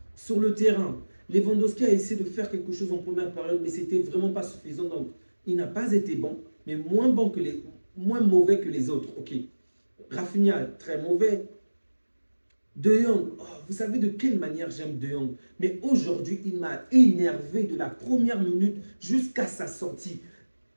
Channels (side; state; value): both; inverted; correlation -1.00